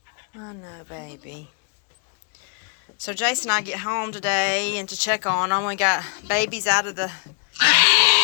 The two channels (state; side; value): quieter; right; 38.5 dB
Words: I know, baby. So Jason and I get home today and to check on them. We got babies out of the